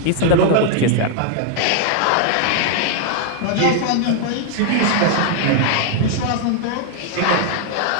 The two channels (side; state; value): both; different; correlation 0.00